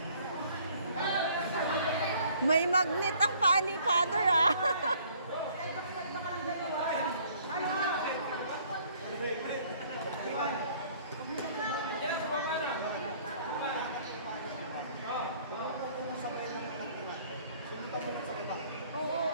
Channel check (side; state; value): both; inverted; correlation -0.58